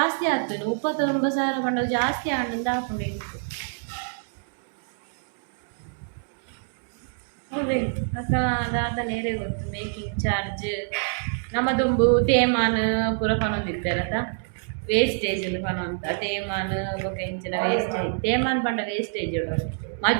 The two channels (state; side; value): silent; left; digital silence